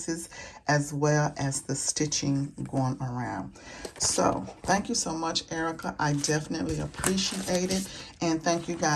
as well as the stitching going around. So thank you so much, Erica. I definitely appreciate it. And thank you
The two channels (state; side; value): identical; both; correlation 1.00